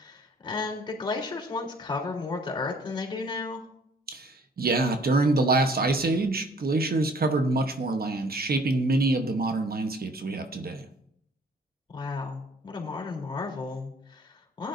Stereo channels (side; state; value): both; normal; correlation 0.57